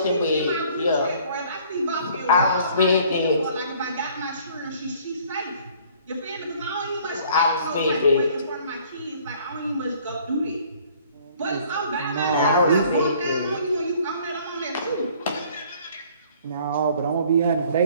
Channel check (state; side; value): inverted; both; correlation -0.56